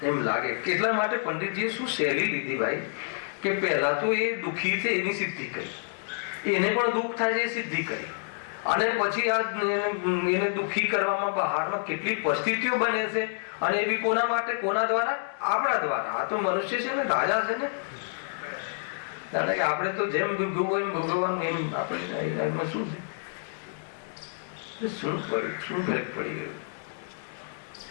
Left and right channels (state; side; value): silent; right; digital silence